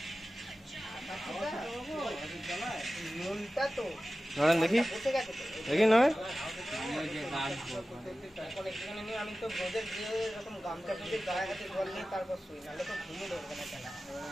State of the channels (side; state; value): both; normal; correlation 0.95